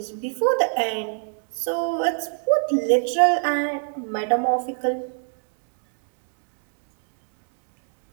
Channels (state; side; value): silent; left; digital silence